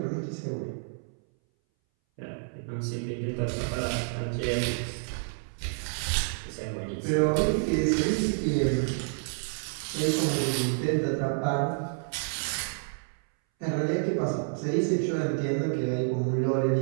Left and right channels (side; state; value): left; silent; 59 dB below the other